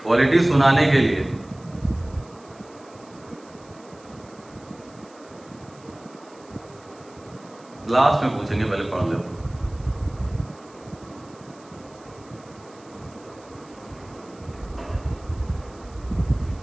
पॉलिटी सुनाने के लिए। लास्ट में पूछेंगे, पहले पढ़ लो।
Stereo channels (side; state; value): right; noise; hiss, 26 dB below the sound